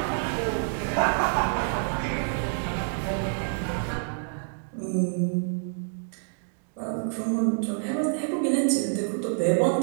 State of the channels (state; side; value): silent; left; digital silence